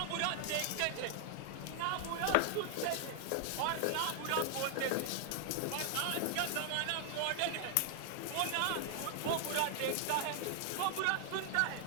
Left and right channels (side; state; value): both; different; correlation 0.00